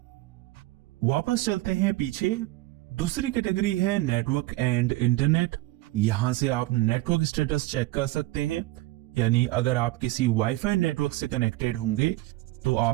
वापस चलते हैं पीछे। दूसरी कैटेगरी है नेटवर्क एंड इंटरनेट। यहां से आप नेटवर्क स्टेटस चेक कर सकते हैं, यानी अगर आप किसी वाईफाई नेटवर्क से कनेक्टेड होंगे तो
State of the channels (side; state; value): left; quieter; 18.1 dB